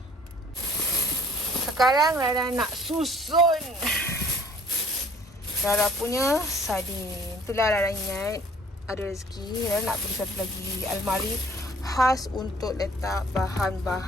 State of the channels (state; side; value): normal; both; correlation 0.55